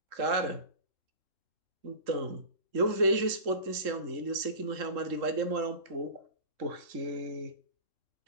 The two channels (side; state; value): left; late; 3.7 ms